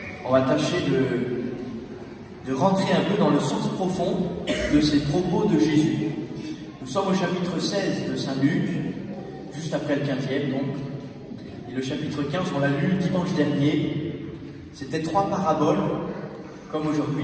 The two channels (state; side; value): identical; both; correlation 1.00